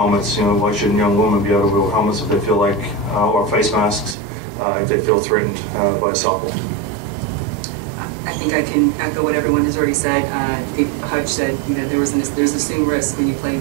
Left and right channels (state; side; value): drops out; left; at 4.2 s